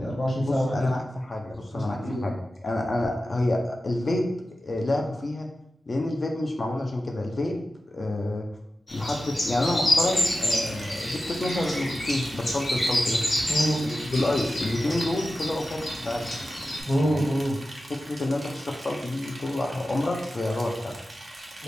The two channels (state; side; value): normal; both; correlation 0.93